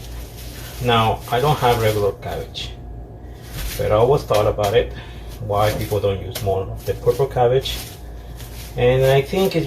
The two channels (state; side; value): identical; both; correlation 1.00